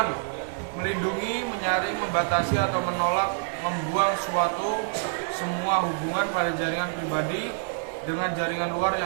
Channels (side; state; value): left; silent; digital silence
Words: melindungi, menyaring, membatasi atau menolak, membuang semua hubungan pada jaringan pribadi dengan jaringan luar